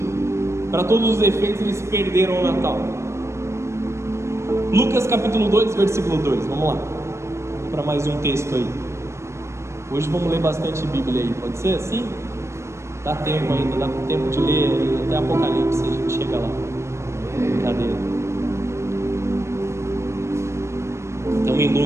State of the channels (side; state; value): left; late; 0.13 ms